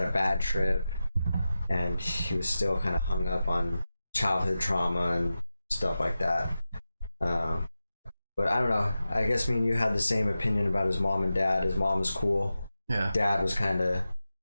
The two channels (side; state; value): both; inverted; correlation -0.93